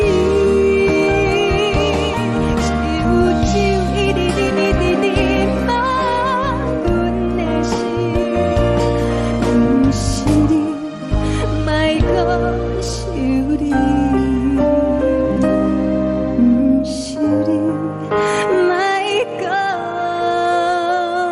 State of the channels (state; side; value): identical; both; correlation 1.00